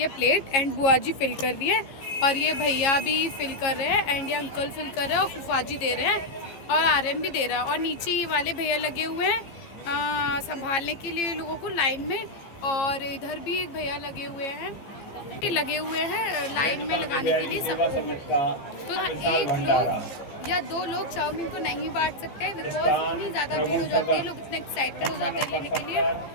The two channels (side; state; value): right; late; 15 ms